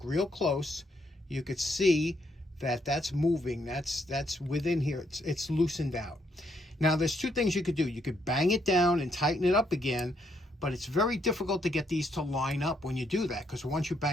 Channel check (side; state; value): both; normal; correlation 0.74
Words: real close, you could see that that's moving. That's within here. It's loosened out. Now, there's two things you could do. You could bang it down and tighten it up again, but it's very difficult to get these to line up when you do that, because once you